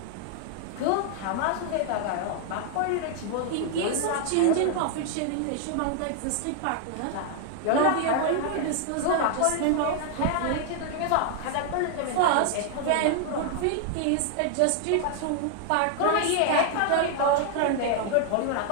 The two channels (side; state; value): both; different; correlation 0.00